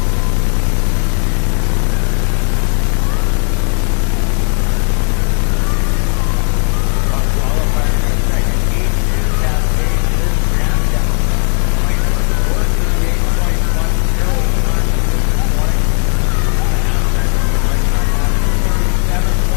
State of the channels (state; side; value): quieter; right; 37.0 dB